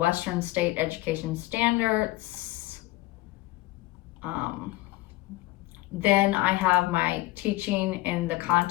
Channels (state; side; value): quieter; right; 19.1 dB